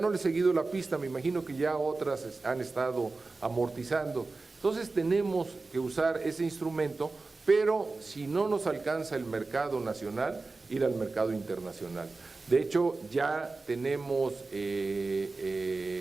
le he seguido la pista, me imagino que ya otras han estado amortizando. Entonces tenemos que usar ese instrumento, pero si no nos alcanza el mercado nacional, ir al mercado internacional. De hecho, ya tenemos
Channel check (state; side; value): quieter; left; 3.7 dB